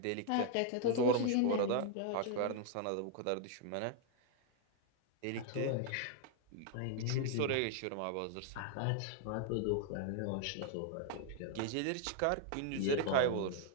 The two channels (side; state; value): both; different; correlation 0.00